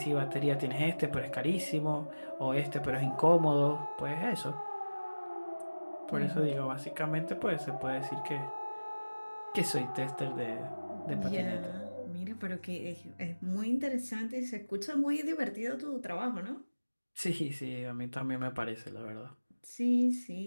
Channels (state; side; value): inverted; both; correlation -1.00